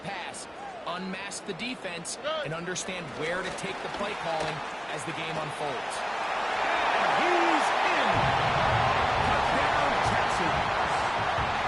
pass. Unmask the defense and understand where to take the play calling as the game unfolds. He's in. Touchdown, Texans.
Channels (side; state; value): both; identical; correlation 1.00